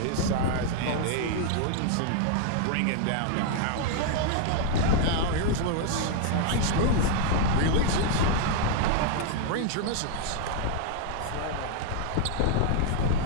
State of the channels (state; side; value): different; both; correlation 0.00